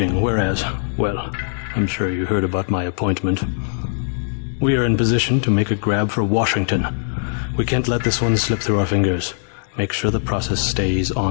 whereas, well, I'm sure you heard about my appointment. We are in position to make a grab for Washington. We can't let this one slip through our fingers. Make sure the process stays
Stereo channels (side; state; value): right; silent; digital silence